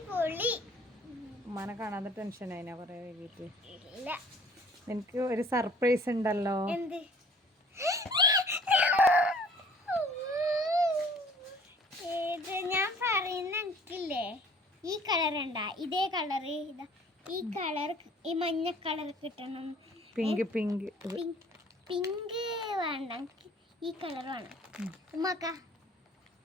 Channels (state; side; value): normal; both; correlation 0.54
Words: ഉമ്മാനെ കാണാതെ ടെൻഷൻ ആയിനാ കൊറേ വൈകിട്ട്. ഇല്ല, എനിക്ക് ഒരു സർപ്രൈസ് ഉണ്ടല്ലോ. എന്ത്? ഞാൻ പറയുന്ന എനിക്കില്ലേ, ഈ കളർ ഉണ്ടാ, ഇതേ കളറ്, ഇതാ ഈ കളർ, ഈ മഞ്ഞ കളർ കിട്ടണം. പിങ്ക് പിങ്ക് പിങ്ക് വേണ്ട, ഈ കളർ വേണം. ഉമ്മാക്ക